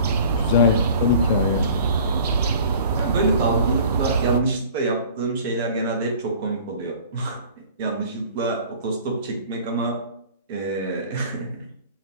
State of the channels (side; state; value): both; inverted; correlation -0.47